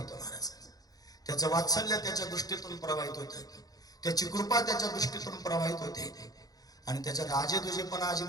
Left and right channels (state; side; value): late; right; 0.18 ms